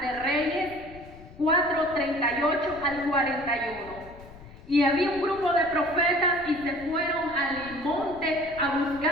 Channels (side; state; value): left; noise; rumble, 18 dB below the sound